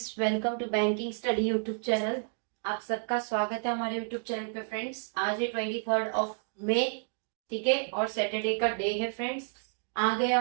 welcome to banking study YouTube channel. आप सबका स्वागत है हमारे यूट्यूब चैनल पे फ्रेंड्स। आज है 23 मई, ठीक है, और सैटरडे का डे है फ्रेंड्स। आ गए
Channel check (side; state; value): left; silent; 57 dB below the other